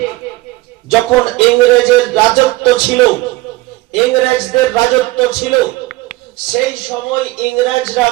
যখন ইংরেজের রাজত্ব ছিল, ইংরেজদের রাজত্ব ছিল, সেই সময় ইংরেজরা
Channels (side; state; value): left; quieter; 19.8 dB